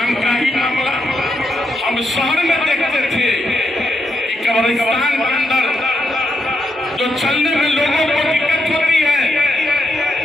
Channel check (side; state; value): both; normal; correlation 0.83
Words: का ही मामला हम शहर में देखते थे कि कब्रिस्तान के अंदर जो चलने में लोगों को दिक्कत होती है,